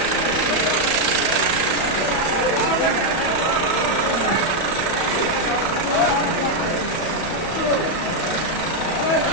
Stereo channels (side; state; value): right; late; 31 ms